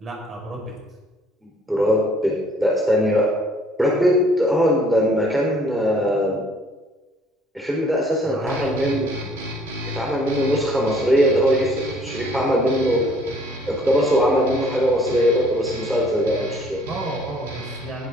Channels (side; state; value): both; normal; correlation 0.59